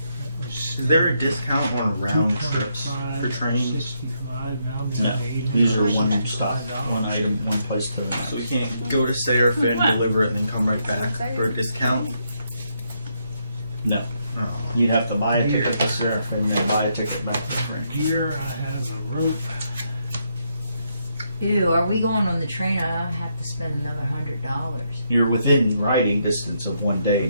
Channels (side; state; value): both; inverted; correlation -0.77